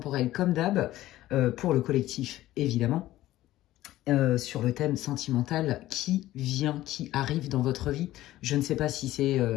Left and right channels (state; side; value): quieter; right; 15.3 dB